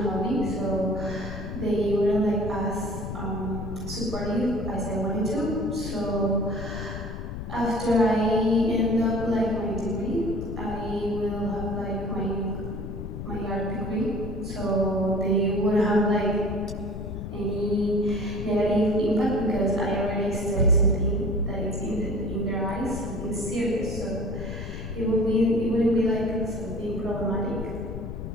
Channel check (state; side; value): noise; left; rumble, 7 dB below the sound